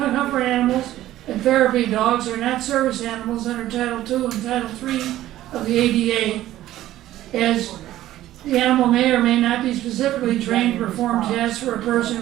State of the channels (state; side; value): quieter; left; 14.1 dB